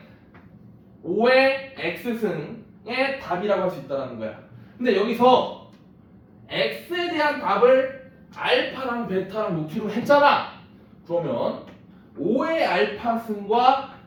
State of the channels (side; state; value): both; identical; correlation 1.00